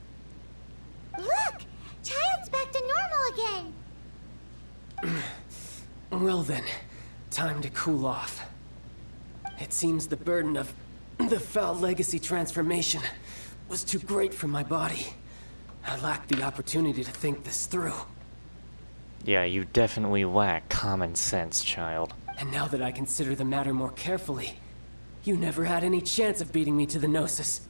Look! Child's back to normal again! Well then, time to cool off. It seems the burden of the foul legacy transformation was too great for my body. I lacked the opportunity to think this through. Yeah, you definitely lack common sense, child. And now that I consider the matter more carefully, you never had any chance of beating me to the Gnosis.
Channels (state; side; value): inverted; both; correlation -1.00